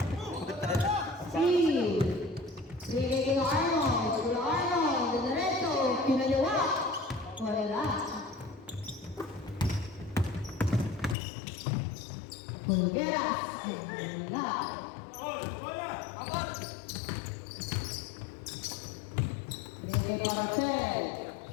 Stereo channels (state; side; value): drops out; right; at 11.2 s